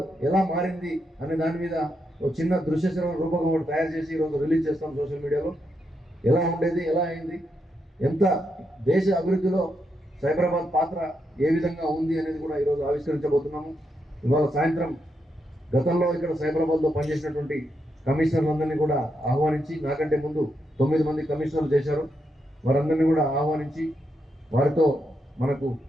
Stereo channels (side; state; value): both; normal; correlation 0.82